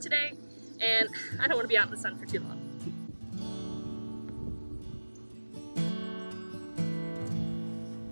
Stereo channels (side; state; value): both; inverted; correlation -1.00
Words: today and I don't want to be out in the sun for too long.